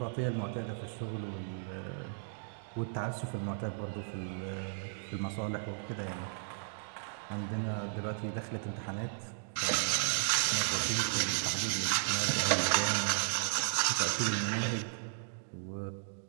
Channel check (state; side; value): silent; left; digital silence